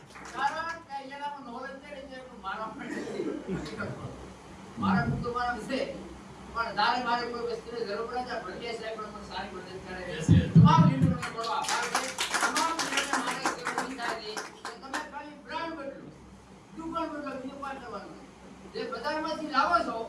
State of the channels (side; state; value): both; identical; correlation 1.00